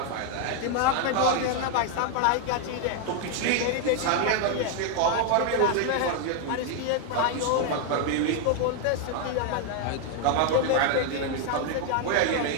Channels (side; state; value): both; different; correlation 0.00